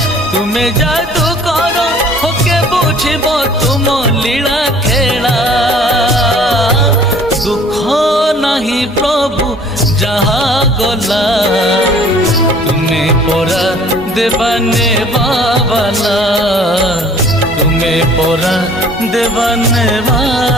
तुम्हें जादू कर होके बुझब तुम लीला खेला दुख नहीं प्रभु जहा गला तुम्हें परा देवाने बाबाला तुम्हें परा देवाने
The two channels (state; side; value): normal; both; correlation 0.52